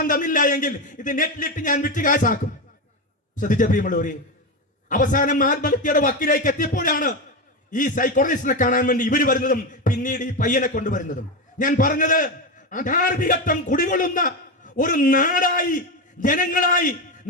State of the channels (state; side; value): normal; both; correlation 0.14